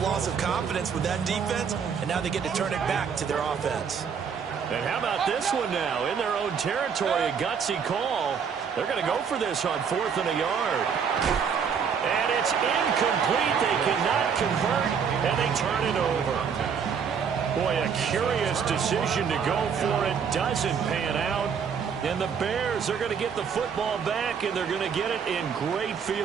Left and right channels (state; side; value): quieter; left; 6.8 dB